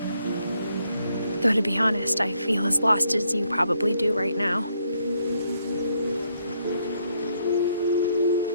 Though to be honest, I feel as lost as you probably do right now.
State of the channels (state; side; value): inverted; both; correlation -0.74